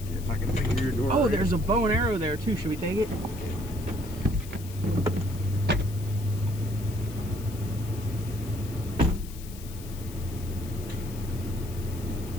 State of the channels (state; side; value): noise; left; hiss, 17 dB below the sound